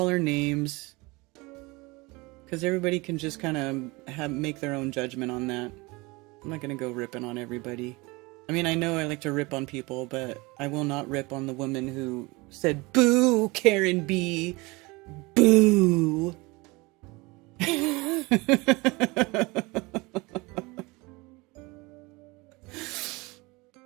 her names because everybody can just kind of make their own judgment on that. I'm not going to go ripping on everybody. I mean, I know I like to rip on people, but I will not rip on the woman who said, "Boo, Karen B. Boo."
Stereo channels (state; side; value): quieter; left; 24.4 dB